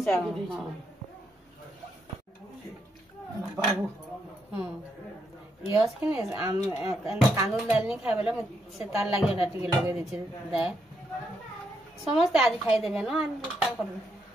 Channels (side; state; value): both; normal; correlation 0.79